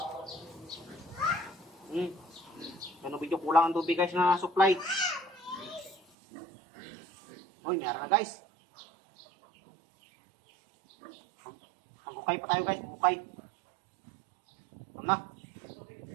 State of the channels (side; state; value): left; drops out; at 6.0 s